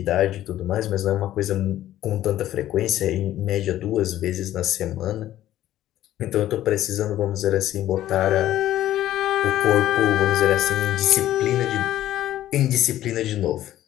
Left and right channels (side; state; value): right; quieter; 13.3 dB